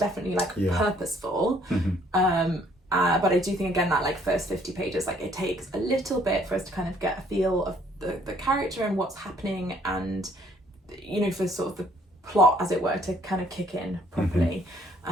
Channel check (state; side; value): normal; both; correlation 0.63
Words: like purposeful. But I do think, again, that like first 50 pages, like it takes a little bit for us to kind of get a feel of the character and what's happening, and for sort of the plot, as it were, to kind of kick in properly.